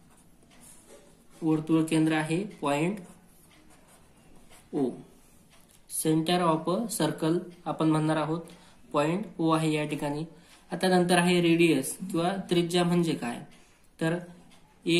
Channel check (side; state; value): both; identical; correlation 1.00